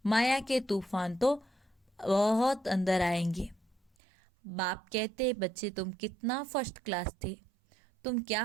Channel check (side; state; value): left; drops out; at 3.9 s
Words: माया के तूफान तो बहुत अंदर आएंगे। बाप कहते, बच्चे तुम कितना फर्स्ट क्लास थे, तुम क्या